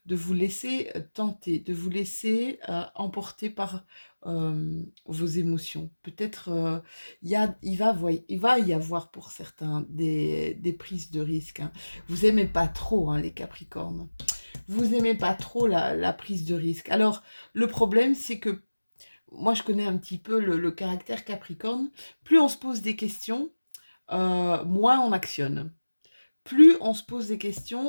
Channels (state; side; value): inverted; both; correlation -1.00